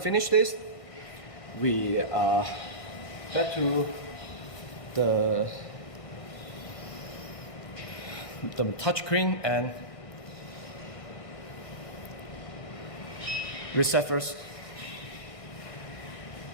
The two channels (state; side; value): late; right; 1.6 ms